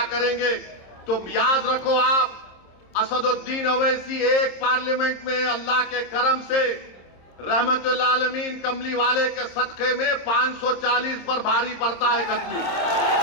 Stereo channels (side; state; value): right; late; 26 ms